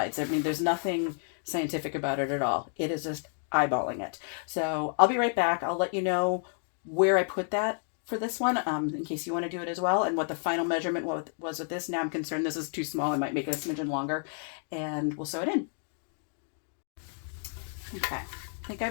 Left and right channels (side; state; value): right; silent; 57 dB below the other